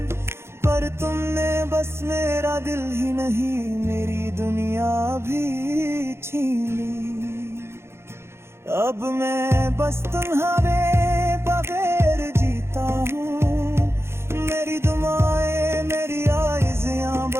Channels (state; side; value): late; left; 0.12 ms